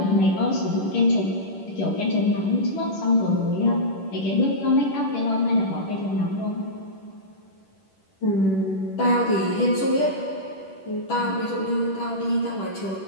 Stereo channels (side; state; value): right; late; 10 ms